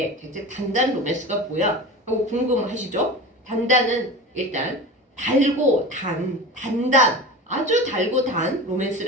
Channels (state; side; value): normal; both; correlation 0.31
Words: 대체 단단 로맨스가 뭐야? 하고 궁금하시죠? 단단은 일단 달고 단단, 아주 달고 단